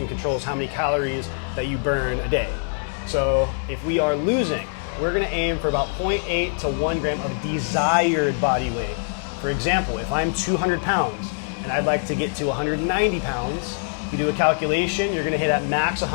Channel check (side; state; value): right; silent; 63 dB below the other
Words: controls how many calories that you burn a day. So if we are losing, we're going to aim for about 0.8 to 1 gram of desired body weight. For example, if I'm 200 pounds and I'd like to get to 190 pounds, if you do a calculation, you're going to hit at max